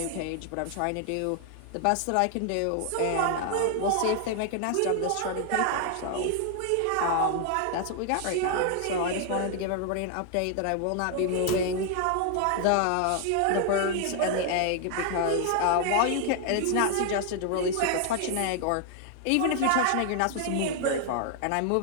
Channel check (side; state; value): both; different; correlation 0.00